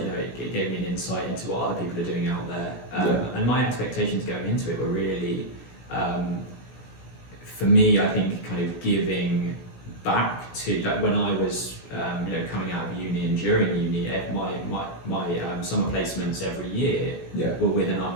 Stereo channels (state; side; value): late; right; 17 ms